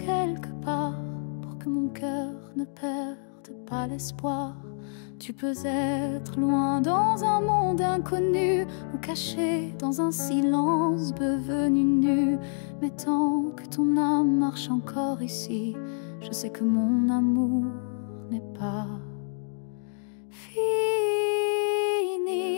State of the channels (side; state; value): right; silent; digital silence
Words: part pour que mon cœur ne perde pas l'espoir. Tu peux être loin dans un monde inconnu, ou caché dans un silence devenu nu. Mais tant que ton âme marche encore ici, je sais que mon amour n'est pas fini.